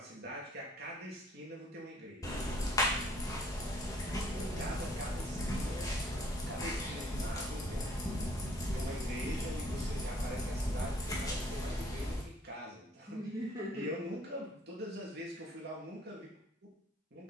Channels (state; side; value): normal; both; correlation 0.61